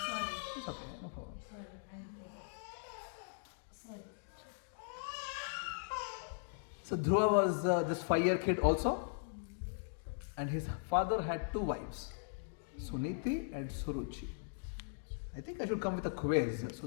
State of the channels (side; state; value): right; silent; digital silence